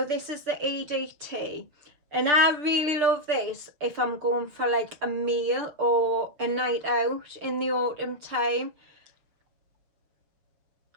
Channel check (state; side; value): late; left; 7.0 ms